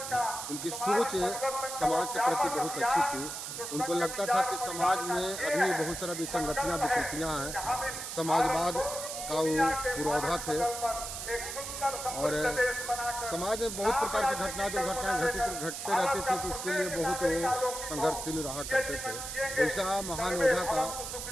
उनकी सोच समाज के प्रति बहुत अच्छी थी। उनको लगता था कि समाज में अभी बहुत सारा विसंगतियाँ विकृतियाँ हैं। समाजवाद का वो पुरोधा थे और समाज में बहुत प्रकार की दुर्घटनाएं घटते रहती थी, तो उसके लिए बहुत वो संघर्षशील रहा करते थे। ऐसा महान योद्धा का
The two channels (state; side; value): noise; right; hiss, 6 dB below the sound